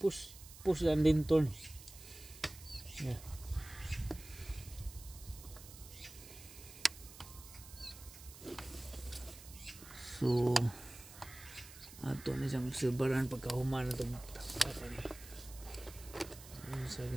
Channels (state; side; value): noise; right; hiss, 16 dB below the sound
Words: lang din turn. Yeah. So ato na siyang obserbaran pagkahuman na itong takpan ni. Ano sabi